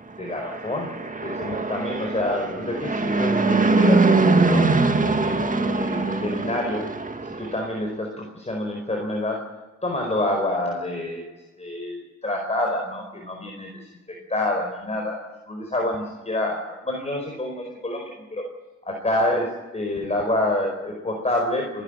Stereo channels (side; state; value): both; normal; correlation 0.49